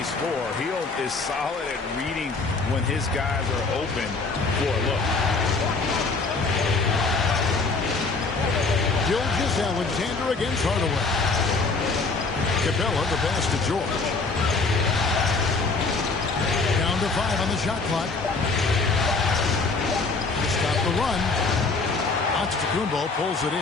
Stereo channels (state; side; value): quieter; right; 4.0 dB